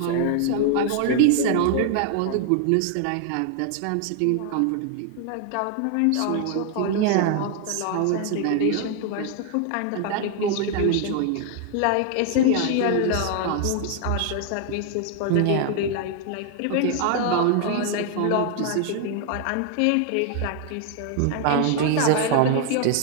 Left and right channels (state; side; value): different; both; correlation 0.00